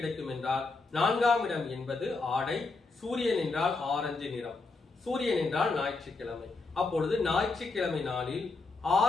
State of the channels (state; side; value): quieter; right; 3.7 dB